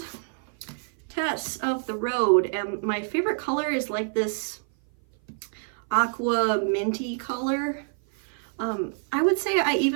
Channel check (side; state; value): left; silent; 56 dB below the other